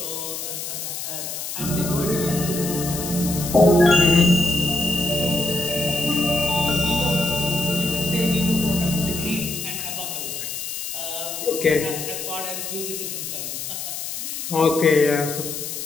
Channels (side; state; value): left; noise; hiss, 6 dB below the sound